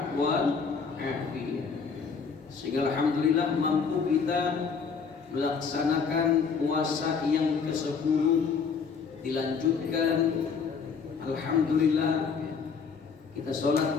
wal afiat, sehingga alhamdulillah mampu kita melaksanakan puasa yang ke-10 dilanjutkan. Alhamdulillah kita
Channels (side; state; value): right; quieter; 5.7 dB